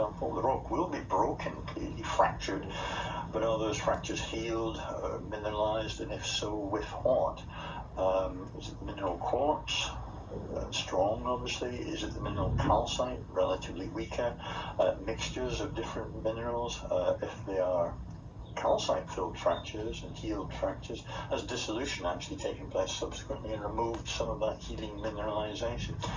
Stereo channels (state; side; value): identical; both; correlation 1.00